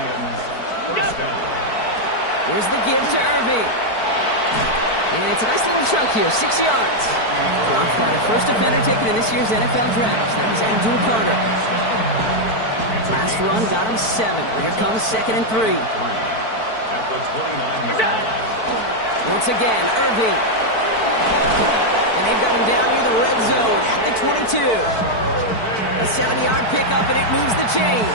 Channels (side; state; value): right; late; 4.5 ms